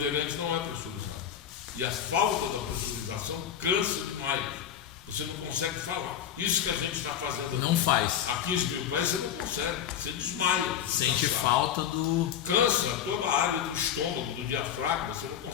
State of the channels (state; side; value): quieter; right; 9.4 dB